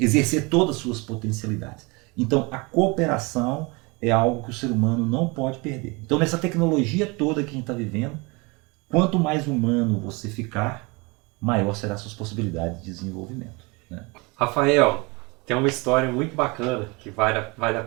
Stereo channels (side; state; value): left; quieter; 27.2 dB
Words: todas as suas potencialidades. Então a cooperação é algo que o ser humano não pode perder. Então nessa tecnologia toda que a gente está vivendo, quanto mais humano você ficar, maior serão as suas possibilidades de desenvolvimento. Né? Rafael, tem uma história muito bacana que vale a